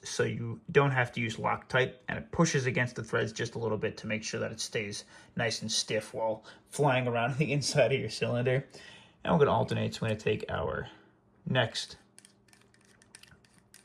so you don't have to use Loctite, and it pushes against the threads just a little bit to make sure that it stays nice and stiff while flying around the inside of your cylinder. And we're going to alternate, so we're going to take our next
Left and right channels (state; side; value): identical; both; correlation 1.00